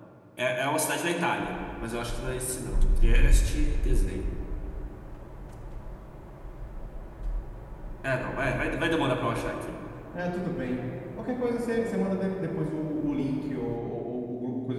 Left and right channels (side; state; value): both; identical; correlation 1.00